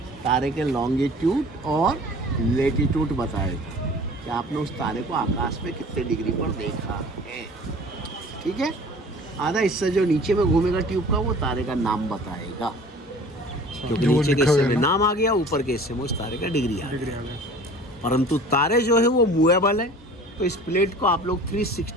तारे के लॉन्गिट्यूड और लेटीट्यूड बताएगा कि आपने उस तारे को आकाश में कितने डिग्री पर देखा है। ठीक है। आधा हिस्सा जो नीचे में घूमेगा ट्यूब का, वो तारे का नाम बताएगा, क्योंकि नीचे के हिस्से में नाम आ गया, ऊपर के हिस्से में उस तारे का डिग्री आ गया। परंतु तारे जो है वो मूवेबल है, तो इस प्लेट को आप लोग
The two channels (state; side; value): normal; both; correlation 0.45